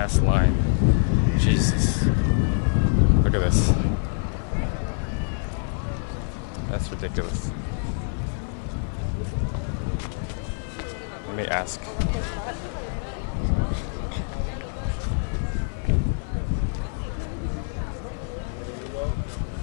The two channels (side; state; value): right; silent; 58 dB below the other